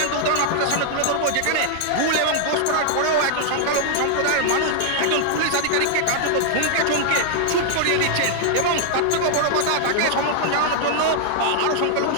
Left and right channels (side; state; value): both; different; correlation 0.00